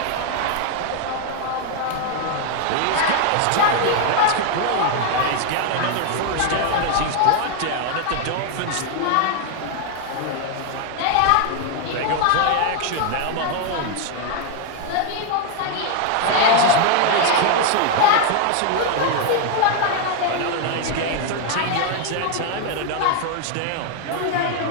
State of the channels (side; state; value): both; different; correlation 0.00